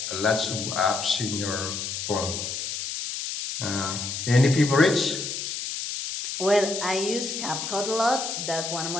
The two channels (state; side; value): noise; left; hiss, 5 dB below the sound